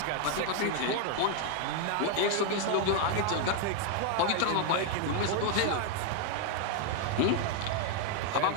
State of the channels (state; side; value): different; both; correlation 0.00